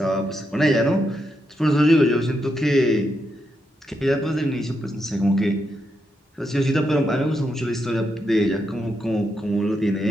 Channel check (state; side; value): normal; both; correlation 0.82